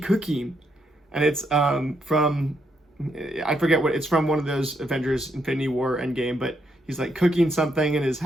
And it's from, I forget what, it's from one of those Avengers Infinity War Endgame, but he's like cooking something in his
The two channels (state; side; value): normal; both; correlation 0.77